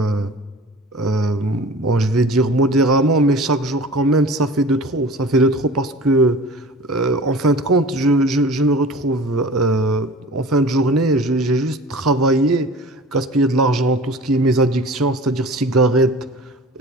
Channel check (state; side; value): normal; both; correlation 0.40